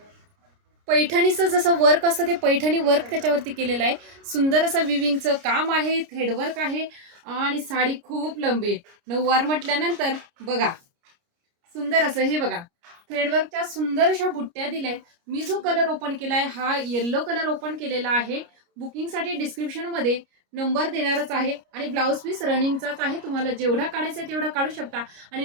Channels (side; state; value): left; late; 29 ms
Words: पैठणीचं जसं वर्क असतं ते पैठणी वर्क त्याच्यावरती केलेलं आहे. सुंदर असं विविंगचं काम आहे, थ्रेडवर्क आहे आणि साडी खूप लंबी आहे. नऊवार म्हटल्यानंतर बघा सुंदर असं हे बघा थ्रेडवर्कच्या सुंदर अशा बुट्ट्या दिल्यात. मी जो कलर ओपन केलाय हा येल्लो कलर ओपन केलेला आहे. बुकिंगसाठी डिस्क्रिप्शन मध्ये नंबर देणारच आहे आणि ब्लाऊज पीस रनिंगचाच आहे. तुम्हाला जेवढा काढायचा तेवढा काढू शकता आणि